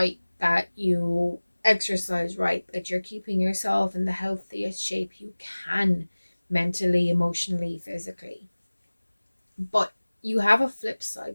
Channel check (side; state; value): both; inverted; correlation -1.00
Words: that you exercise right, that you're keeping yourself in the healthiest shape you can, mentally, emotionally, physically. But you have a flip side,